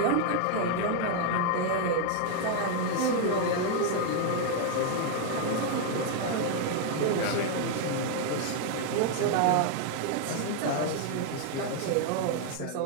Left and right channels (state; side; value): different; both; correlation 0.00